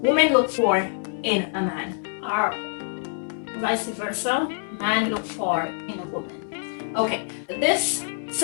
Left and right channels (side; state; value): right; silent; 58 dB below the other